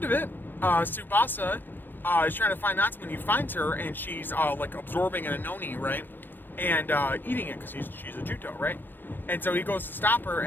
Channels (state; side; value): late; right; 0.093 ms